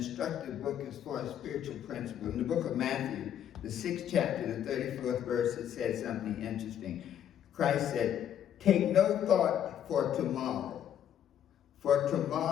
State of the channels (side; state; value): right; quieter; 9.9 dB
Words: book as far as spiritual principles. In the book of Matthew, the 6th chapter, the 34th verse, it said something interesting. Christ said, take no thought for tomorrow